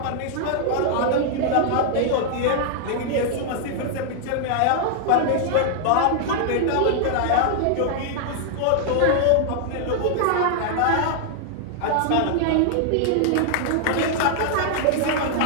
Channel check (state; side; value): different; both; correlation -0.01